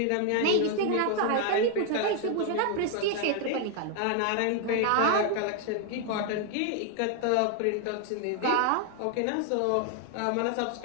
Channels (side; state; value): both; different; correlation 0.00